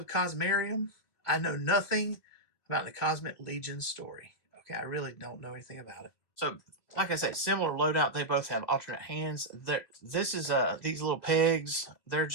Cosmarium. I know nothing about the Cosmic Legion story. Okay, I really don't know anything about it. So, like I said, similar loadout. They both have alternate hands. This is these little pegs. They're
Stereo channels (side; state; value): right; late; 2.0 ms